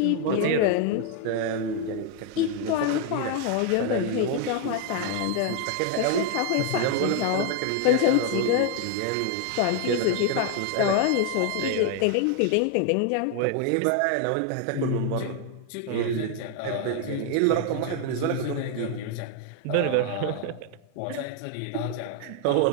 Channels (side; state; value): both; different; correlation 0.00